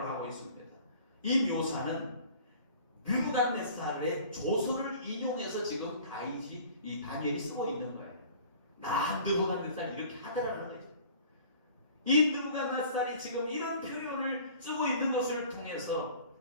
하고 있습니다. 이 묘사는 느부갓네살의 조서를 인용해서 지금 이 다니엘이 쓰고 있는 거예요. 나 느부갓네살 이렇게 하더라는 거예요. 이 느부갓네살이 지금 이런 표현을 쓰고 있는 것을 통해서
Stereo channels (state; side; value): inverted; both; correlation -0.47